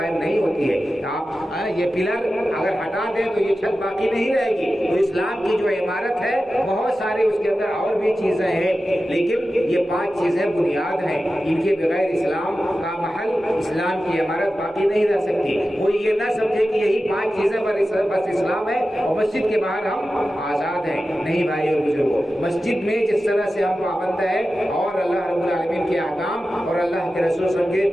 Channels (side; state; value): both; normal; correlation 0.93